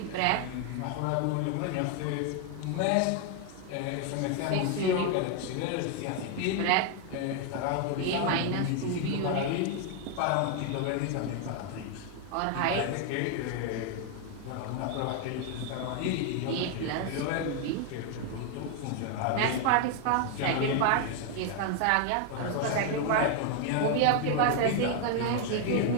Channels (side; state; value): both; different; correlation 0.01